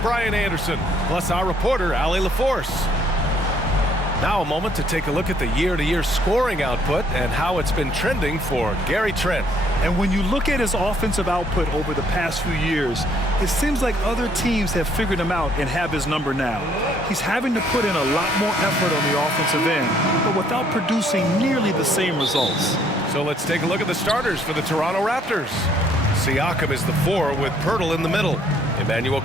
Anderson, plus our reporter Allie LaForce. Now a moment to take a look at the year-to-year scoring output and how it's been trending for Gary Trent. And when you look at his offensive output over the past few years, it seems like other teams have figured him out and have his number now. He's having to put in a lot more effort on the offensive end, but without producing nearly the same results. So let's take a look at the starters for the Toronto Raptors. Siakam is the 4 with Pirtle in the middle. Emmanuel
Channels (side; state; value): both; normal; correlation 0.65